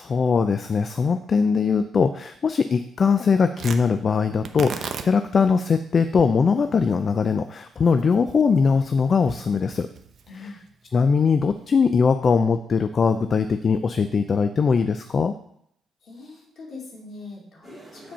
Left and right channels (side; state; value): right; quieter; 5.0 dB